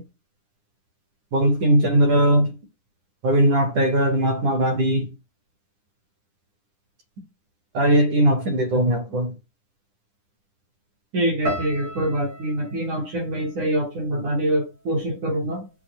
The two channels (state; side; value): late; left; 9.9 ms